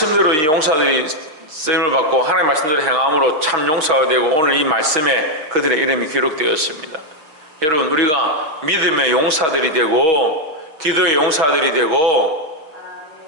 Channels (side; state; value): left; late; 6.3 ms